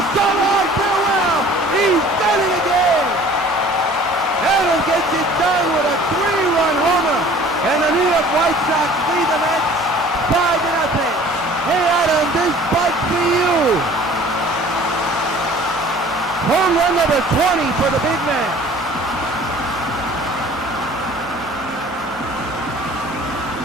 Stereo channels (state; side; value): normal; both; correlation 0.50